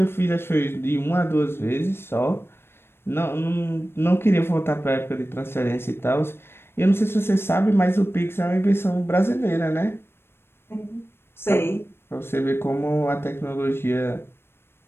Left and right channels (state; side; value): late; right; 0.12 ms